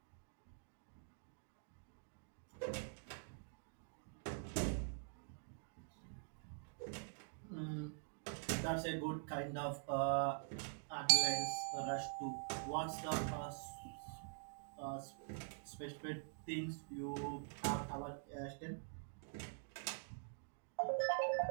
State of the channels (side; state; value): left; silent; digital silence